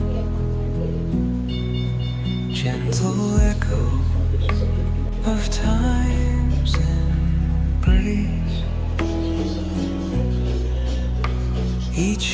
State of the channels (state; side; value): identical; both; correlation 1.00